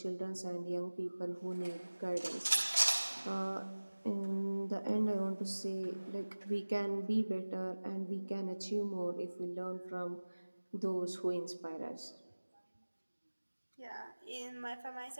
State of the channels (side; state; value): both; inverted; correlation -1.00